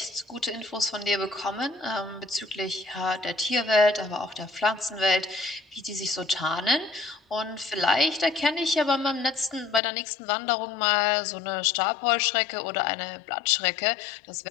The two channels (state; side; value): drops out; right; at 9.8 s